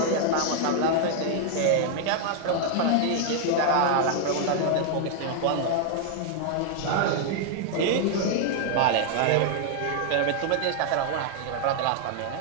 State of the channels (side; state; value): both; different; correlation 0.00